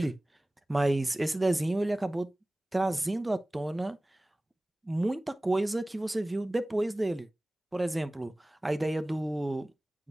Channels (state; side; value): normal; both; correlation 0.98